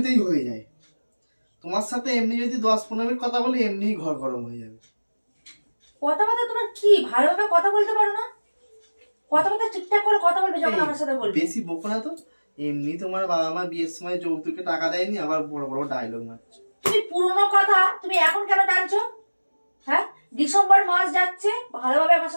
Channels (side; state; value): both; inverted; correlation -1.00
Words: হয়ে যায়, তোমার সাথে এমনি যদি 10-15 মিনিট কথা বলি এমনিই ঘর গরম হয়ে যাবে। কথাবার্তা তোমার কি ভালোভাবে কথা বলতে পারো না? কথাবার্তা ঠিকঠাক করে কথা বলবে যখন আমার সাথে বলবে। বেশি বকো না তো। এমনি তোমার বাবা মা বিয়ের সময় যৌতুকে টাকা দেয়নি, আবার বড় বড় ডায়লগ মারছে। তুমি পুরনো কথা তুমি এখন কেন টানছো? হ্যাঁ, ডিসেম্বর মাস যাচ্ছে, ভালোভাবে আমার